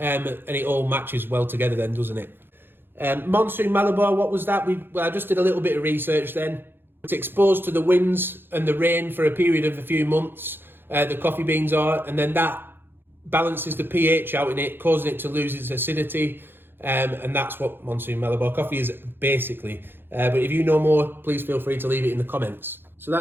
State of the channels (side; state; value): left; late; 0.10 ms